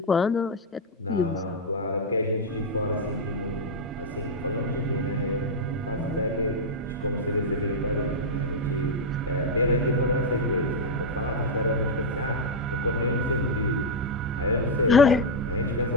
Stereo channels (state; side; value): normal; both; correlation -0.01